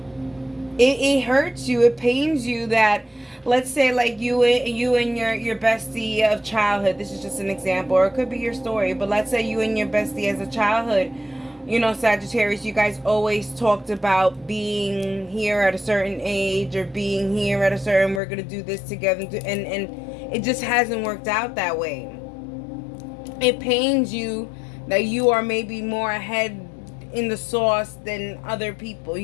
It hurts you, it pains you that, let's say, like you and your bestie of childhood, this is just an example, or it could be your story, but let's say you and your bestie as a childhood, you know, Sagittarius, you guys always talked about being here at a certain age, or being here at a certain, we're gonna do this together, and it just hasn't worked out that way. It pains you that you are maybe more ahead in the sauce than other people,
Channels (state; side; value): drops out; right; at 18.2 s